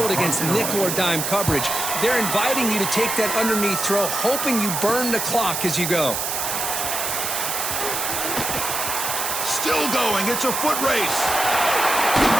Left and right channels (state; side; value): noise; right; hiss, 2 dB below the sound